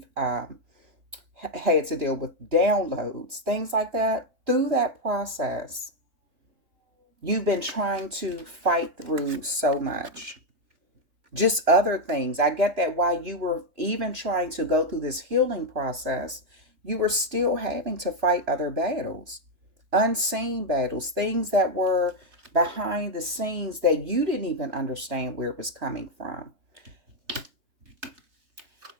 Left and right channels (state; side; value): late; left; 3.0 ms